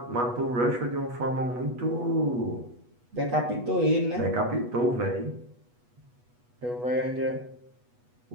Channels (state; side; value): late; left; 8.2 ms